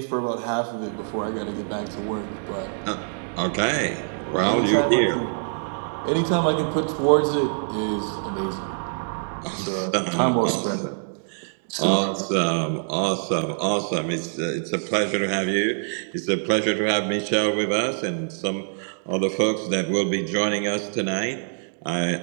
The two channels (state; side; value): silent; left; digital silence